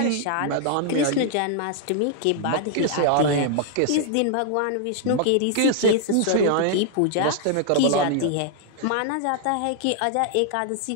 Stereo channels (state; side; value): different; both; correlation 0.00